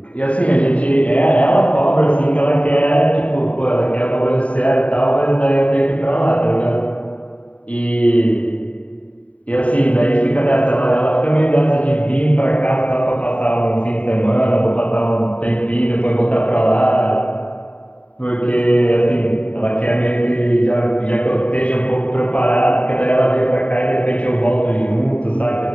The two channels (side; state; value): right; late; 0.066 ms